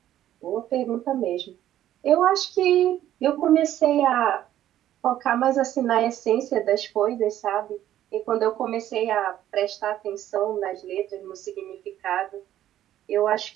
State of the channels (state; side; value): quieter; left; 12.3 dB